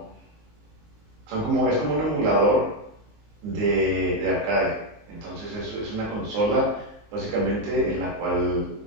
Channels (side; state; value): left; late; 19 ms